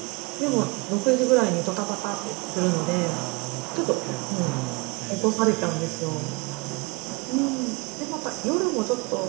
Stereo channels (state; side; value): quieter; left; 27.9 dB